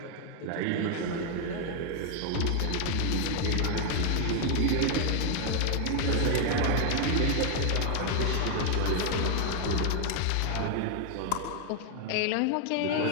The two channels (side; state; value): both; different; correlation 0.00